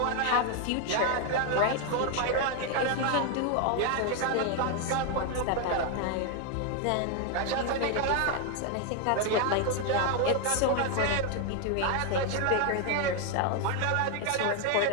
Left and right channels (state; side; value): different; both; correlation 0.01